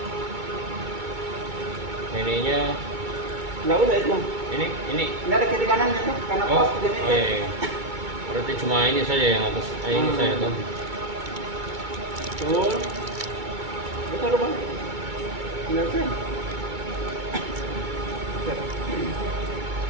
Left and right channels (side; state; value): left; late; 2.2 ms